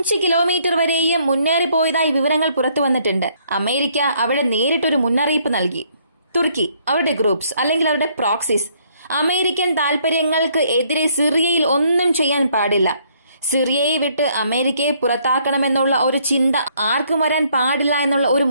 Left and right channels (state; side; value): inverted; both; correlation -0.67